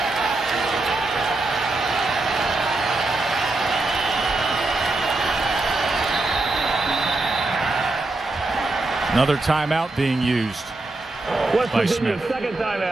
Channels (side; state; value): left; quieter; 3.0 dB